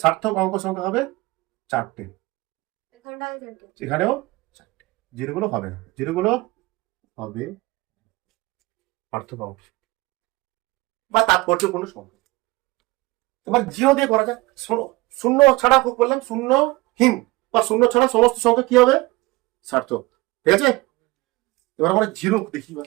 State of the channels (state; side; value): quieter; left; 21.5 dB